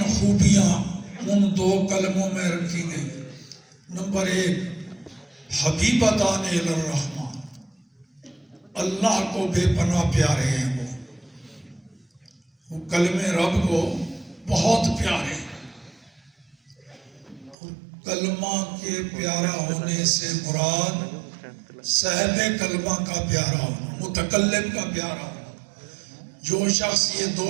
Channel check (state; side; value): drops out; left; at 17.6 s